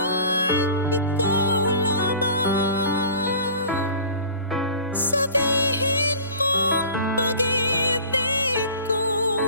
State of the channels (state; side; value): inverted; both; correlation -0.41